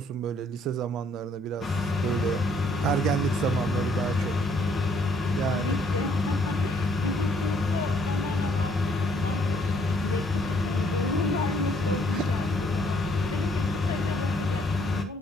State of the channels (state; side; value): normal; both; correlation 0.66